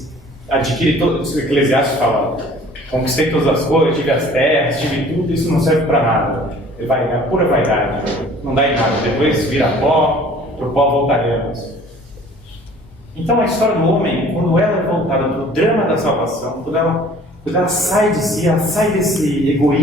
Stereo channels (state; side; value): normal; both; correlation 0.51